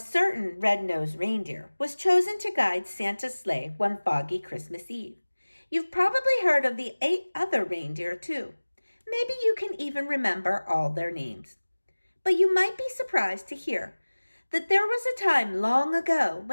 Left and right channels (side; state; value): both; inverted; correlation -1.00